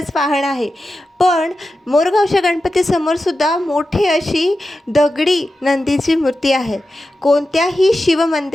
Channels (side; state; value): both; normal; correlation 0.92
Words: वाहन आहे. पण मोरगावच्या गणपतीसमोरसुद्धा मोठी अशी दगडी नंदीची मूर्ती आहे. कोणत्याही